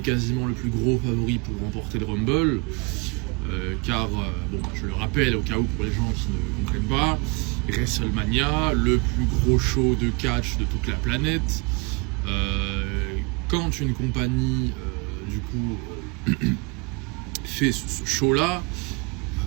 quasiment le plus gros favori pour remporter le Rumble. Car, je le rappelle au cas où pour les gens qui ne comprennent pas, WrestleMania, le plus gros show de catch de toute la planète. Quand une compagnie, fait ce show-là,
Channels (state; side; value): quieter; left; 29.9 dB